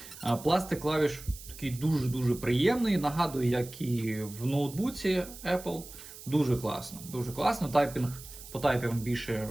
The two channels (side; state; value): right; noise; hiss, 15 dB below the sound